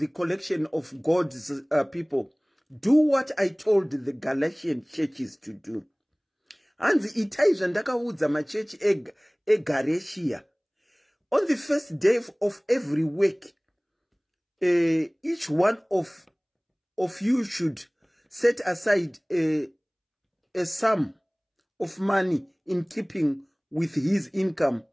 collection of God's people. Do what I told the Galatian churches to do. Hanzi itai zvandakaudza machechi eGalatia. On the first day of every week, each one of you should set aside a sum of money in keeping with his income,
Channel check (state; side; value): identical; both; correlation 1.00